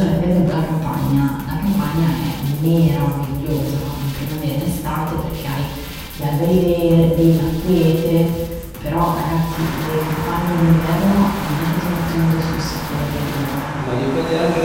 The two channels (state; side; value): identical; both; correlation 1.00